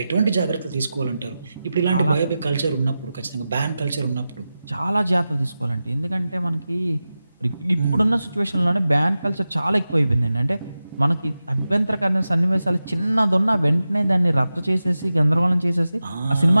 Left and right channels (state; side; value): inverted; both; correlation -0.93